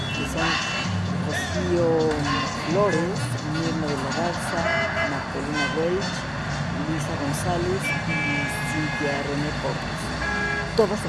que son Rocío Flores, Mirna de la Garza, Magdalena Welch, Luisa González y Cintia René Portes. Todas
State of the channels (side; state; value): both; identical; correlation 1.00